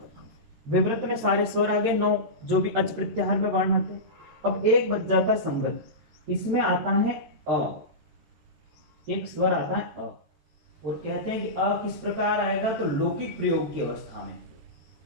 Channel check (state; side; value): late; left; 14 ms